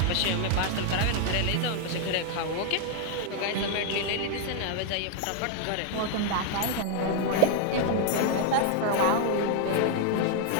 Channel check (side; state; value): both; different; correlation 0.00